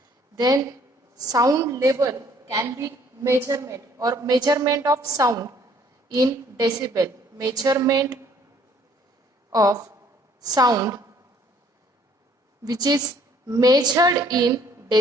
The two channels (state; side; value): normal; both; correlation 0.60